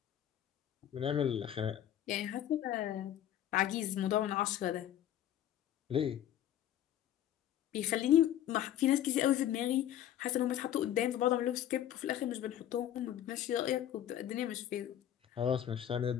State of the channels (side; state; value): right; quieter; 11.3 dB